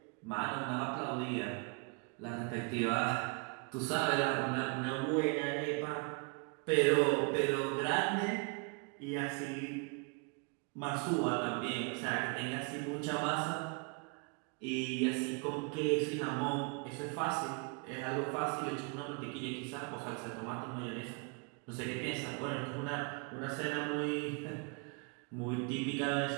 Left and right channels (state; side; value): quieter; left; 33.8 dB